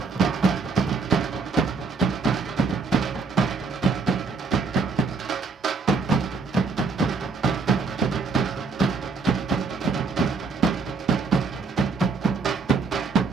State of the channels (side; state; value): left; quieter; 4.6 dB